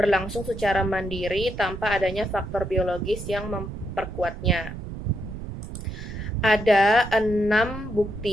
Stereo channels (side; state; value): right; noise; rumble, 9 dB below the sound